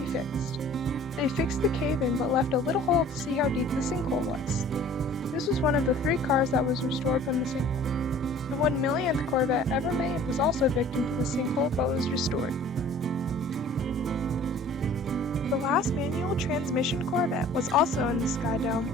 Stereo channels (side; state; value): both; normal; correlation 0.49